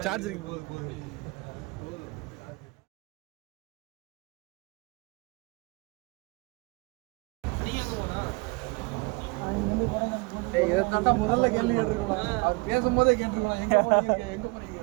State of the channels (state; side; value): quieter; left; 27.4 dB